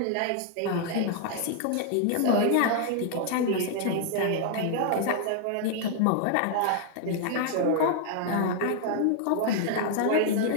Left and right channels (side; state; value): both; different; correlation 0.00